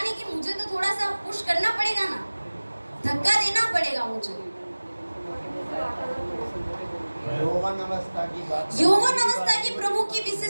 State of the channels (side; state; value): both; inverted; correlation -1.00